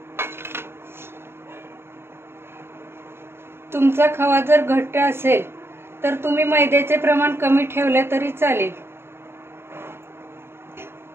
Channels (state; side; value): late; left; 0.11 ms